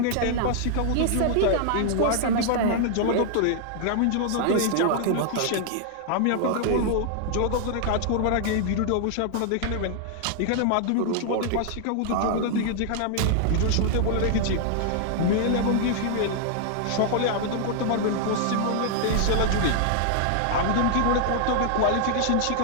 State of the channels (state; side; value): different; both; correlation -0.01